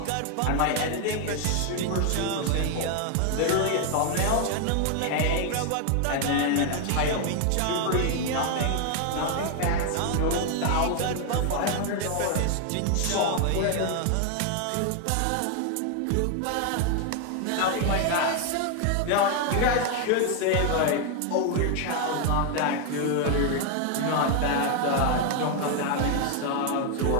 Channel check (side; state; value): both; different; correlation 0.01